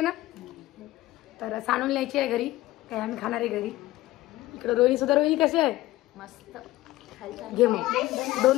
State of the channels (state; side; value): quieter; right; 16.8 dB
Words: ना. तर सांडून न्यायची आहे घरी, काय आम्ही खाणार आहे घरी. इकडे रोहिणी सुद्धा. रोहिणी कशी आहे? मस्त. घे मग